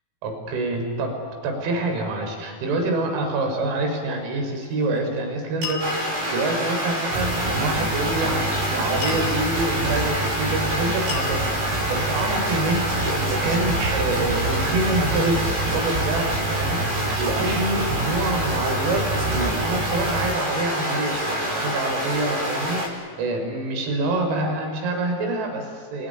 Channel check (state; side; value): late; left; 18 ms